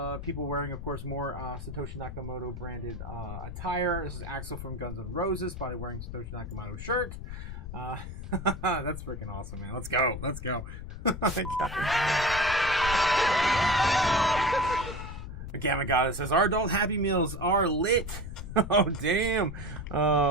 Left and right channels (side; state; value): left; noise; rumble, 9 dB below the sound